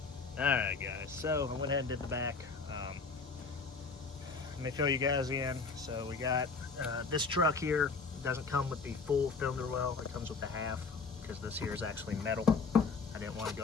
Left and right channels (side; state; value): right; quieter; 4.6 dB